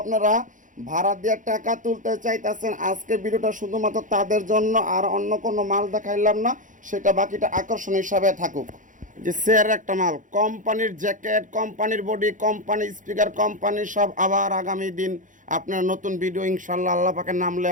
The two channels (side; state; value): left; late; 0.37 ms